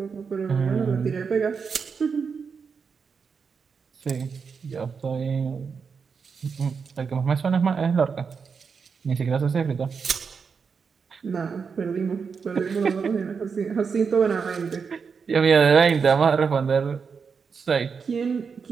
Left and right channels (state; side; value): quieter; left; 5.7 dB